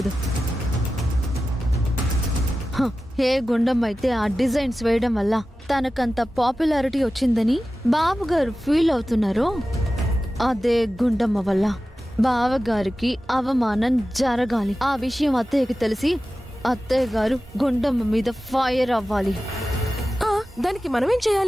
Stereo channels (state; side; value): normal; both; correlation 0.94